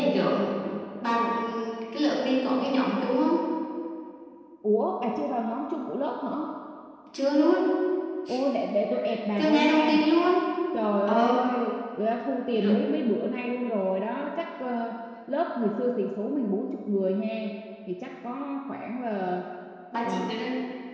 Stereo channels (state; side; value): identical; both; correlation 1.00